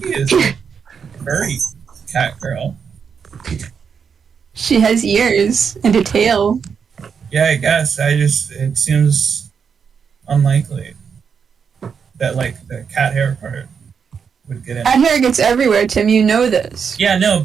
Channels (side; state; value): left; quieter; 6.5 dB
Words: is a furry cat girl. She has ears and a tail. Yeah, I guess. It seems unlikely that, like, the cat hair part would get in. Cat hair gets everywhere, Tim. You know this. Yeah, no,